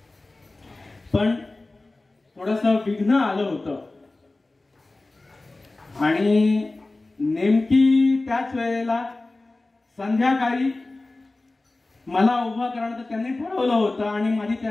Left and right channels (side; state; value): right; quieter; 3.1 dB